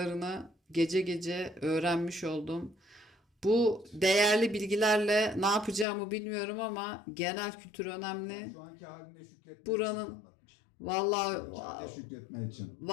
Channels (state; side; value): drops out; right; at 5.9 s